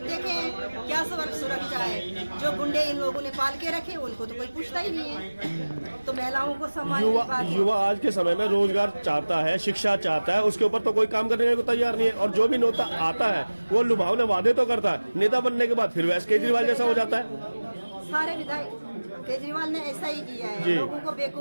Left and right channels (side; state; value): both; inverted; correlation -1.00